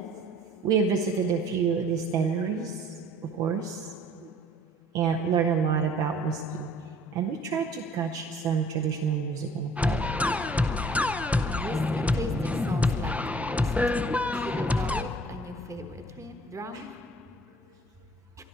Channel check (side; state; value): both; normal; correlation 0.55